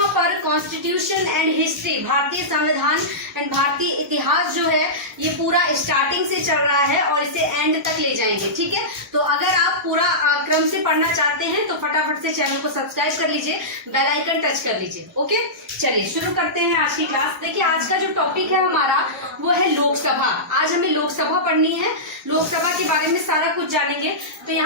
पर कॉन्स्टिट्यूशन एंड हिस्ट्री, भारतीय संविधान एंड भारतीय इतिहास जो है ये पूरा स्टार्टिंग से चल रहा है और इसे एंड तक ले जाएंगे। ठीक है, तो अगर आप पूरा क्रम से पढ़ना चाहते हैं तो फटाफट से चैनल को सब्सक्राइब कर लीजिए, बेल आइकन टच कर लीजिए। ओके, चलिए शुरू करते हैं आज की क्लास। देखिए, आज का जो टॉपिक है हमारा वो है लोकसभा। आज हमें लोकसभा पढ़नी है, लोकसभा के बारे में सारा कुछ जानेंगे। तो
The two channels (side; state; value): both; normal; correlation -0.16